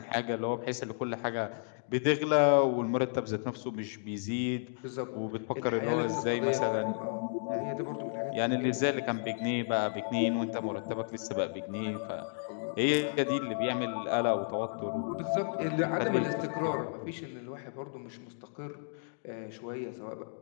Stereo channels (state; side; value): silent; right; digital silence